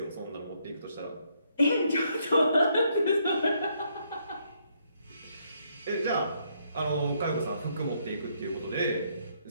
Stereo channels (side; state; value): both; inverted; correlation -0.73